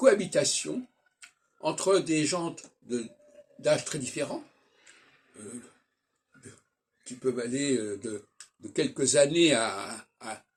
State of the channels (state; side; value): identical; both; correlation 1.00